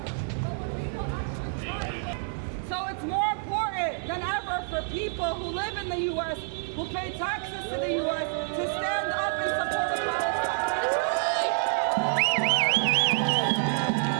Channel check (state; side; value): silent; left; 58 dB below the other